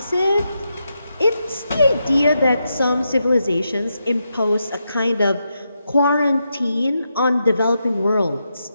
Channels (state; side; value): inverted; both; correlation -0.85